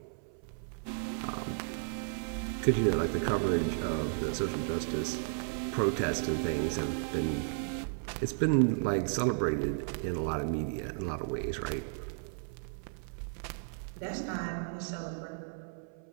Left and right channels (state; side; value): silent; left; 55 dB below the other